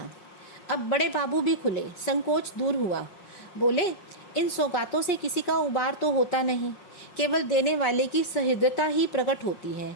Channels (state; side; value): late; right; 5.5 ms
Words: अब बड़े बाबू भी खुले, संकोच दूर हुआ। बोले, इन सौगातों से किसी का उबार तो होता नहीं, केवल देने वाले की सहृदयता ही प्रकट होती है,